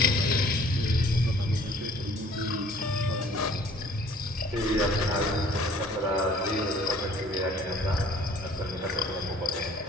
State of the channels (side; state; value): both; normal; correlation 0.55